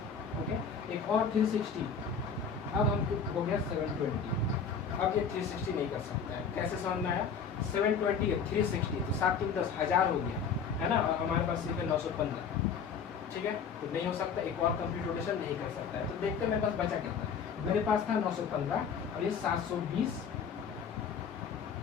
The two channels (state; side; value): quieter; right; 6.3 dB